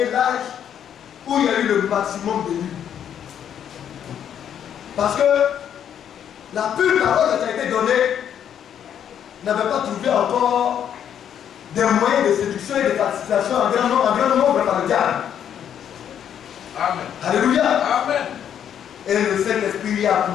l'âge où il y a eu le maximum de nuits. Parce que la pure parole qui a été donnée n'avait pas trouvé encore des moyens de séduction et de participation en grand nombre par le diable. Amen. Alléluia. Amen. Et le Saint-Esprit a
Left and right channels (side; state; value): right; quieter; 9.2 dB